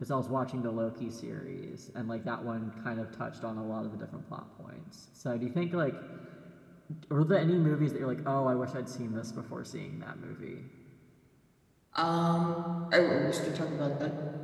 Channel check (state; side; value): identical; both; correlation 1.00